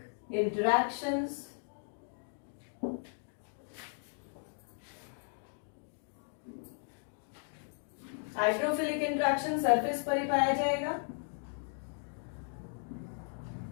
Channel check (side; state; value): right; silent; 54 dB below the other